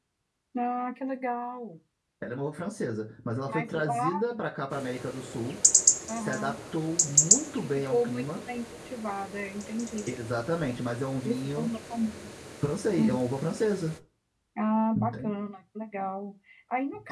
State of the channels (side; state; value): both; identical; correlation 1.00